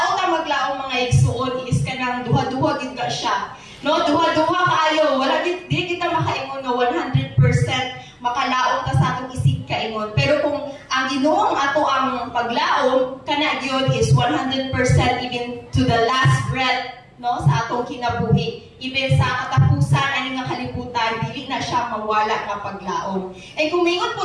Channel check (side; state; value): both; identical; correlation 1.00